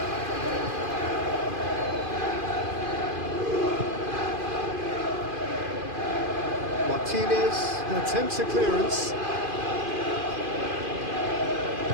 Martinez attempts a clearance.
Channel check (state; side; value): late; left; 2.5 ms